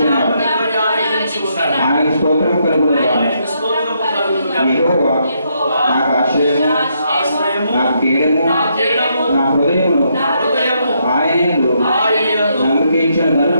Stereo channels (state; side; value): inverted; both; correlation -0.76